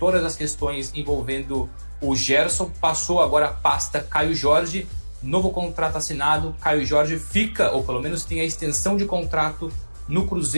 as questões envolvendo o Gerson, passou agora a pasta Caio Jorge, novo contrato assinado, Caio Jorge fica, ou pelo menos tem a extensão de contrato no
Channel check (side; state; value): both; inverted; correlation -1.00